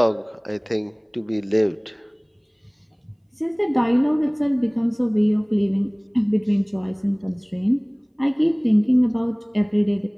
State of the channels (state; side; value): identical; both; correlation 1.00